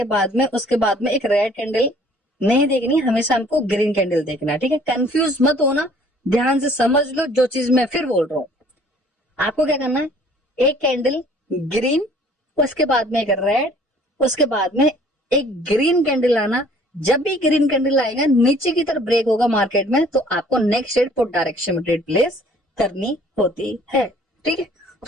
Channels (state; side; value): normal; both; correlation 0.55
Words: बाद में उसके बाद में एक रेड कैंडल नहीं देखनी, हमेशा हमको ग्रीन कैंडल देखना है, ठीक है। कंफ्यूज मत होना, ध्यान से समझ लो जो चीज मैं फिर बोल रहा हूँ। आपको क्या करना है, एक कैंडल ग्रीन, उसके बाद में एक रेड, उसके बाद में एक ग्रीन कैंडल आना। जब भी ग्रीन कैंडल आएगा, नीचे की तरफ ब्रेक होगा मार्केट में, तो आपको नेक्स्ट ट्रेड पुट डायरेक्शन में ट्रेड प्लेस करनी होती है, ठीक है।